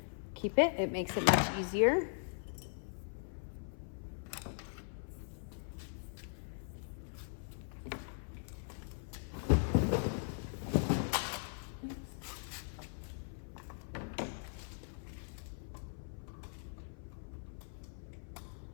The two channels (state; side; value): silent; right; 51 dB below the other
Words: keep it. It makes it much easier.